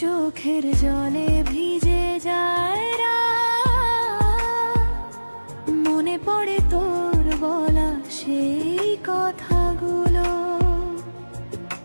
জলে ভিজে যায় রাত, মনে পড়ে তোর বলা সেই কথাগুলো।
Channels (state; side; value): inverted; both; correlation -1.00